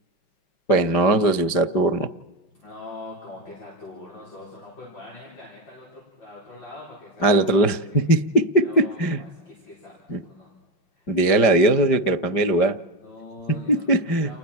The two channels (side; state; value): right; late; 5.1 ms